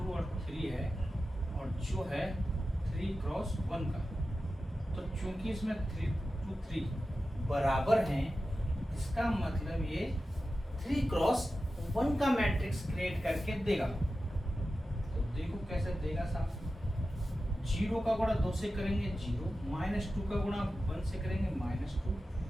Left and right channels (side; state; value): both; normal; correlation 0.93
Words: और 3 है, और जो है 3 क्रॉस 1 का। तो चूंकि इसमें 3 2 3 बराबर हैं, इसका मतलब ये 3 क्रॉस 1 का मैट्रिक्स क्रिएट करके देगा। तो देखो कैसे देगा साहब। 0 का गुणा 2 से करेंगे 0, -2 का गुणा 1 से करेंगे -2,